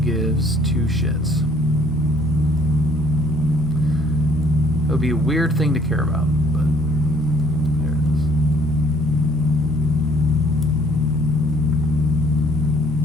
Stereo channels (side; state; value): both; normal; correlation 0.60